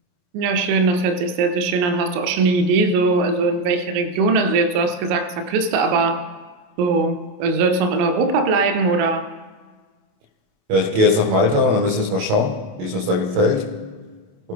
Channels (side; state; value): left; late; 28 ms